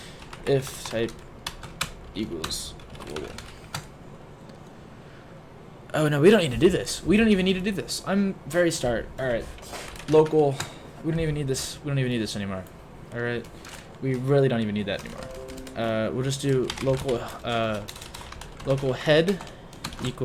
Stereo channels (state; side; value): identical; both; correlation 1.00